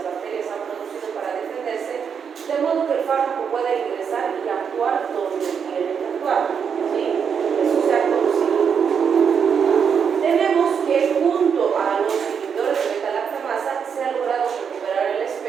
bacterias han producido para defenderse, de modo que el fármaco pueda ingresar y actuar donde tiene que actuar, ¿sí? Eso se ha conseguido. Tenemos que junto a los inhibidores de beta-lactamasa se ha logrado recuperar el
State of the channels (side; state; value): left; quieter; 6.9 dB